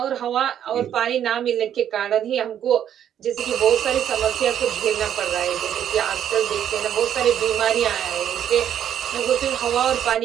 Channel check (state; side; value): quieter; left; 9.9 dB